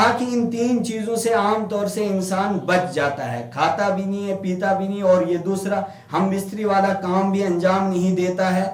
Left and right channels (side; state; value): both; identical; correlation 1.00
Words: کہ ان تین چیزوں سے عام طور سے انسان بچ جاتا ہے، کھاتا بھی نہیں ہے، پیتا بھی نہیں، اور یہ دوسرا ہم بستری والا کام بھی انجام نہیں دیتا ہے،